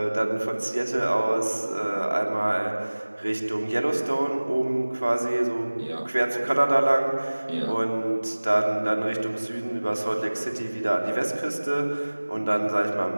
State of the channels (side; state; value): both; inverted; correlation -1.00